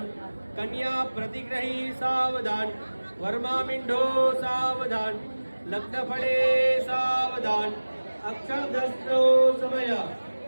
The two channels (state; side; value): inverted; both; correlation -1.00